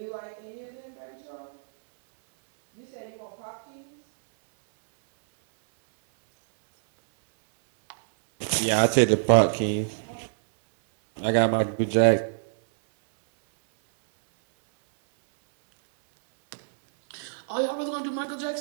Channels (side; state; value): left; silent; 61 dB below the other